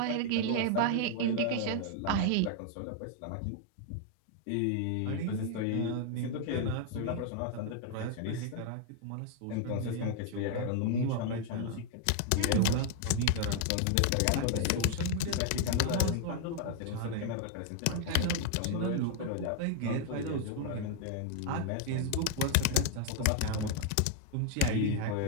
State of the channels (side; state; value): both; different; correlation 0.00